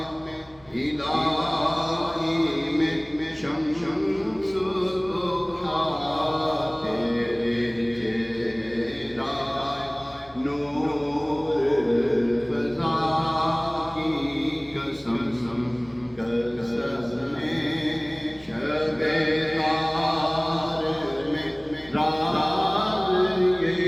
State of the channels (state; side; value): noise; right; hum, 27 dB below the sound